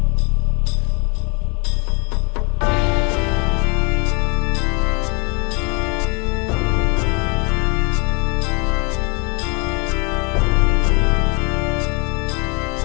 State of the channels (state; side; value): quieter; right; 32.0 dB